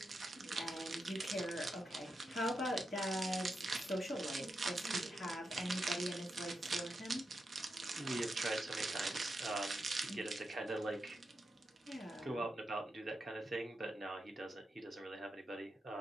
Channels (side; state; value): both; normal; correlation 0.87